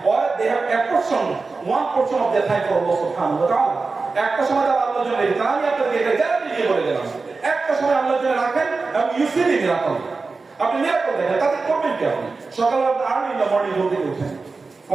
or they have apportion one portion of their time for Allah সুবহানাহু ওয়া তাআলা। একটা সময় তারা আল্লাহর জন্য রেখেছেন। আমি আপনাদেরকে এটা গ্যারান্টি দিয়ে বলে দিলাম, একটা সময় আল্লাহর জন্য রাখেন এবং ইউ সি দি মিরাকল। আপনি মিরাকল দেখেন, তাতে করবেন কি? আপনি সকালবেলা আর্লি ইন দ্য মর্নিং ঘুম থেকে উঠেন,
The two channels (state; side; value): quieter; left; 4.1 dB